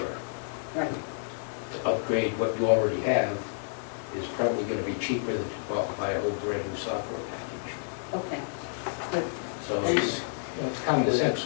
Right. to upgrade what you already have is probably going to be cheaper than to go out and buy a whole brand new software package. Okay. Good. So it's, you know, it's common sense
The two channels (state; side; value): silent; right; digital silence